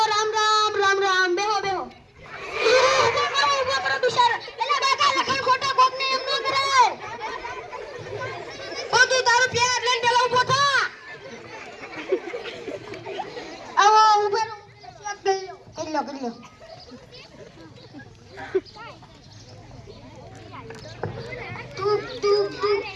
રામ બેહો ઉભો કરો બિચારા એલા બાકા લખણ ખોટા કોક ને એમ ન કરાય ઓ તું તારું પ્યાર લઈને પેલા ઊભો થા. આવો ઉભો રહો કરી લો તું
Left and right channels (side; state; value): both; identical; correlation 1.00